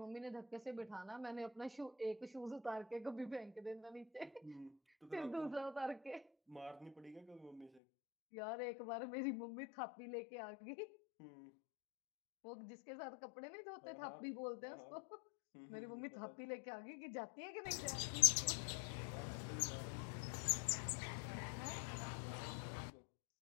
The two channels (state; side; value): drops out; right; at 7.8 s